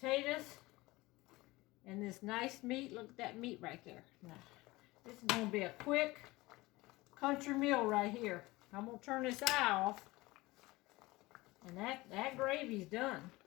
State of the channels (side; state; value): right; quieter; 20.7 dB